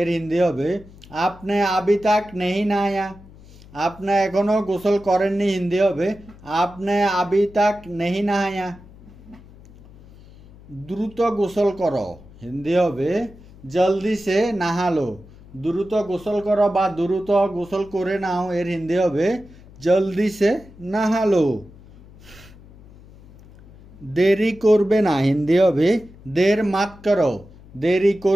হিন্দি হবে আপনি আবি তাক নেহি নায়া, আপনি এখনো গোসল করেননি হিন্দি হবে আপনি আবি তাক নেহি নায়া। দ্রুত গোসল করো হিন্দি হবে জলদি সে নাহালো, দ্রুত গোসল করো বা দ্রুত গোসল করে নাও, এর হিন্দি হবে জলদি সে নাহালো। দেরি করবে না হিন্দি হবে দের মাত করো, দেরি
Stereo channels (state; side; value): noise; left; hum, 22 dB below the sound